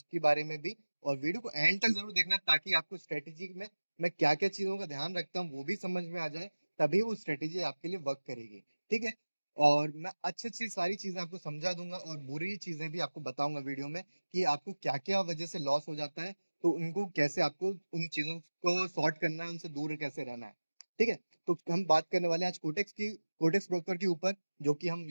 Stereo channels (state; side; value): inverted; both; correlation -1.00